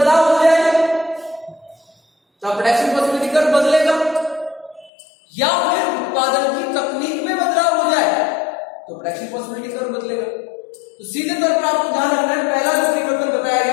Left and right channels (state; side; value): drops out; right; at 4.9 s